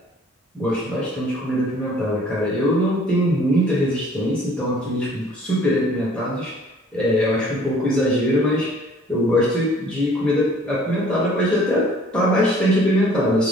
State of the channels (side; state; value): both; normal; correlation 0.54